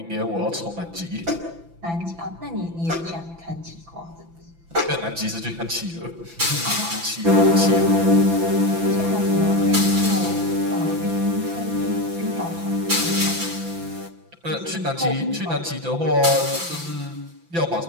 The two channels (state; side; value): late; left; 5.9 ms